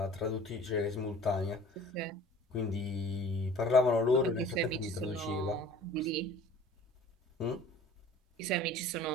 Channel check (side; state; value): both; normal; correlation 0.45